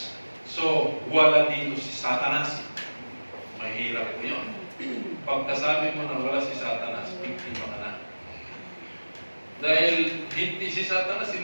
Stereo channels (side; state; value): both; inverted; correlation -1.00